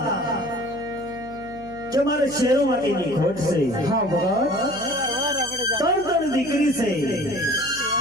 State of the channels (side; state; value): left; noise; hum, 20 dB below the sound